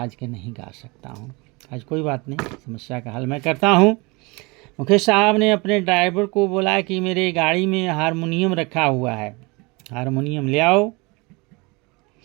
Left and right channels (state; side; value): quieter; left; 26.7 dB